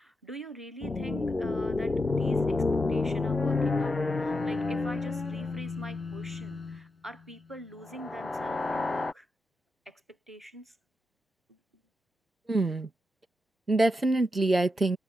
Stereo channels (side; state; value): both; normal; correlation 0.86